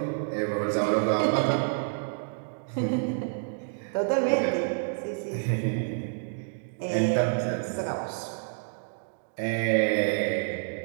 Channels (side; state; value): left; silent; digital silence